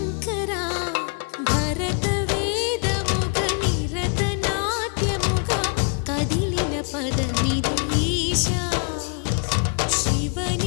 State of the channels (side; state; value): right; quieter; 38.7 dB